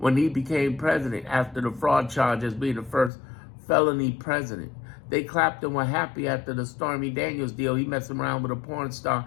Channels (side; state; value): right; drops out; at 3.1 s